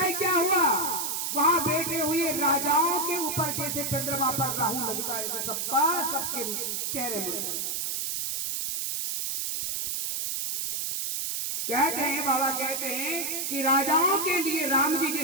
क्या हुआ, वहां बैठे हुए राजाओं के ऊपर जैसे चंद्रमा पर राहु लगता है ऐसे सबके चेहरे मुड़ जाए। कहते हैं, बाबा कहते हैं कि राजाओं के लिए राम जी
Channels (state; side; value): noise; right; hiss, 1 dB below the sound